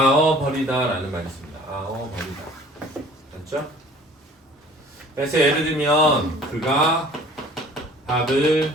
라는 말이 있습니다. 버리다. 맞죠? 그래서 예를 들면 그가 밥을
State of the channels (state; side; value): normal; both; correlation 0.49